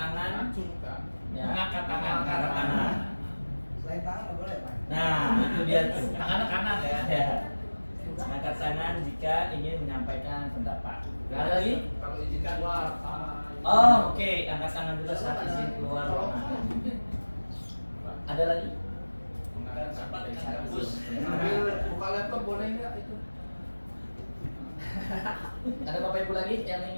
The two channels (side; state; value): both; inverted; correlation -1.00